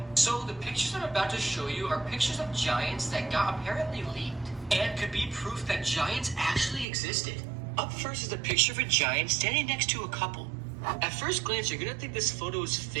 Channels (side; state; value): left; drops out; at 6.9 s